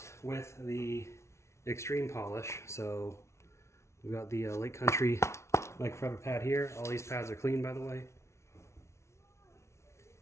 with the extreme polish. So we've got the Lake Country microfiber pad here. All these pads are clean, by the way.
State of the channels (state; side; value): late; right; 0.13 ms